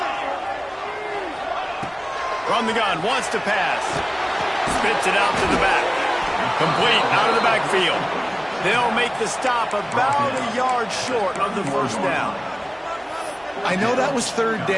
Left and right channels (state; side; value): identical; both; correlation 1.00